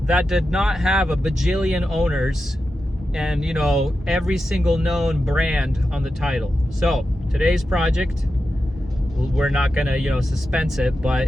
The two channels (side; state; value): both; normal; correlation 0.90